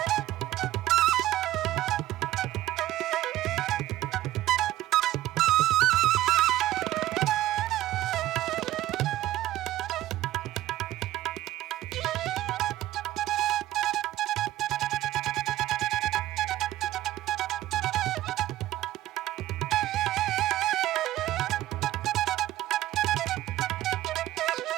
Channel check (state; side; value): quieter; left; 14.9 dB